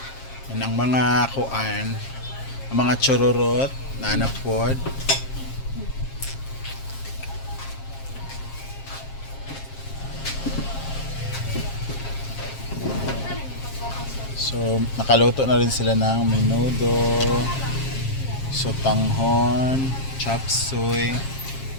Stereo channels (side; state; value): right; late; 7.5 ms